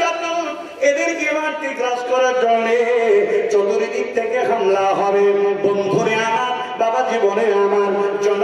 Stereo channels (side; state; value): both; identical; correlation 1.00